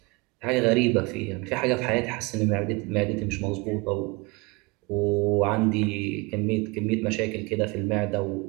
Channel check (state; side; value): quieter; left; 26.5 dB